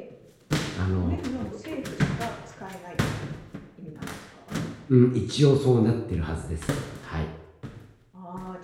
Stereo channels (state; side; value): identical; both; correlation 1.00